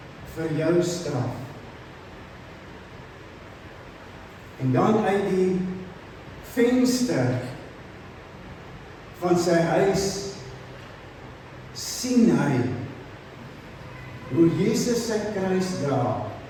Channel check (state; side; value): identical; both; correlation 1.00